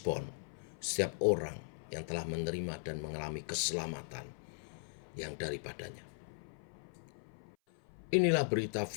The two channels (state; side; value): silent; right; 52 dB below the other